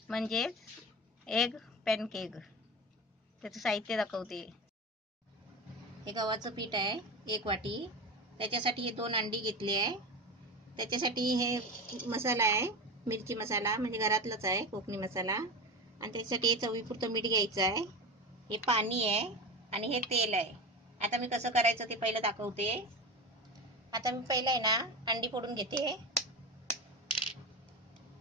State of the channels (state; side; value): normal; both; correlation 0.25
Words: म्हणजेच एग पॅनकेक. त्याचं साहित्य दाखवते. हे गव्हाचं पीठ आहे 1 वाटी. त्याच्यासाठी हे 2 अंडी घेतली आहे. त्याच्यासाठी हे मसाला आहे, मिरची मसाला, म्हणजे घरातलाच आहे, कोकणी मसाला. आणि त्याच्यासाठी हे चवीपुरतं मीठ घ्यायचं आहे. हे पाणी आहे आणि हे तेल आहे. आता मी कसं करायचं ते पहिलं दाखवते. आता मी पहिलं आहे ना अंडी फोडून घेते.